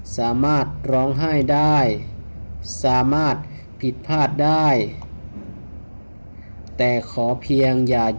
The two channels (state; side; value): inverted; both; correlation -1.00